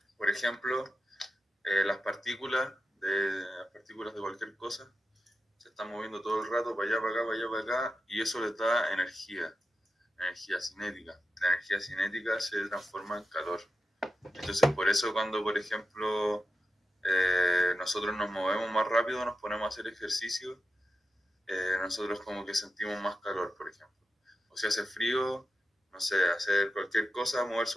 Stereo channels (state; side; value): normal; both; correlation 0.90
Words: Por ejemplo, las partículas de cualquier cosa se están moviendo todo el rato para allá, para acá, para allá, para acá, y eso les da energía cinética. La energía cinética se transforma en calor. Entonces, por eso cuando, por ejemplo, nosotros nos movemos más rápido, nos ponemos a hacer ejercicio, nosotros como que sentimos más calor, por ejemplo. O si hace frío, no sé, hacer cualquier cosa, moverse